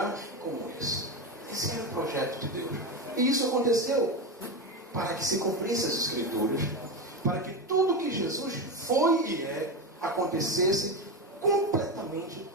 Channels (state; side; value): normal; both; correlation 0.16